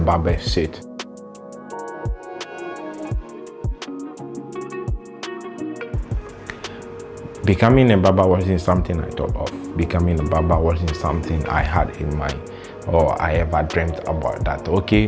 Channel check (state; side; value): identical; both; correlation 1.00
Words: seat. Becoming a barber wasn't something I thought of. Becoming a barber wasn't something I had in mind or I ever dreamt about that, okay,